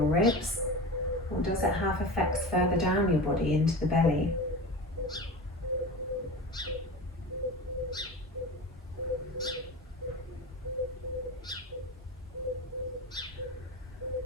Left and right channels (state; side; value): normal; both; correlation 0.30